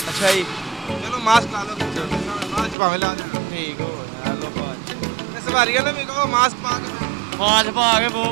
ਅੱਛਾ ਜੀ, ਚਲੋ ਮਾਸਕ ਲਾ ਲਓ, ਬਾਅਦ 'ਚ ਭਾਵੇਂ ਲਾ ਦੇਣਾ। ਠੀਕ ਹੋ ਗਿਆ ਲੋ ਬਾਜ। ਤੇ ਸਵਾਰੀਆਂ ਨੂੰ ਵੀ ਕਹੋ ਮਾਸਕ ਪਾ ਕੇ ਜਾਓ। ਮਾਸਕ ਪਾ ਕੇ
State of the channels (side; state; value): left; drops out; at 2.8 s